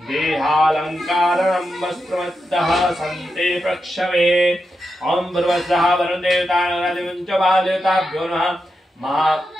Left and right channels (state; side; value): normal; both; correlation 0.87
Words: वस्त्रमद्दः सन्ते प्रक्षवे। ओम भर्वस्वः वरुणदेवताभ्यो नमः।